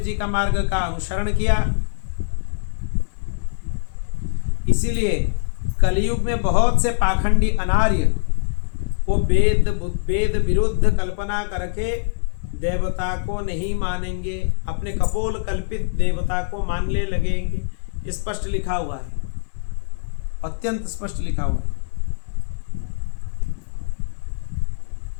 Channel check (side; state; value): right; silent; 64 dB below the other